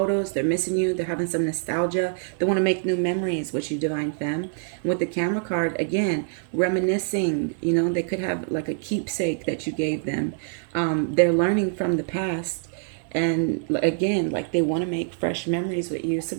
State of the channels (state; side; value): silent; left; digital silence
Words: they're missing you, they're having some nostalgia, they want to make new memories with you, Divine Femme. And with the camera card, again, reminiscing, you know, they could have like a keepsake that you gave them. They're learning from the past. And again, like they want to make fresh memories with you. So